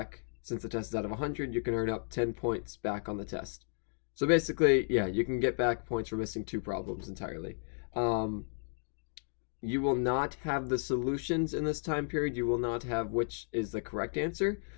since the test is out of 100, you can earn up 10 points back on the test. So basically, yeah, you can get back points for missing 2 problems entirely. You will not have the solutions in this time period. You will not have which is the correct answer.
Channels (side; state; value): right; silent; digital silence